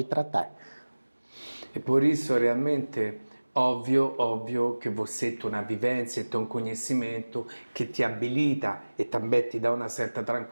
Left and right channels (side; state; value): both; inverted; correlation -1.00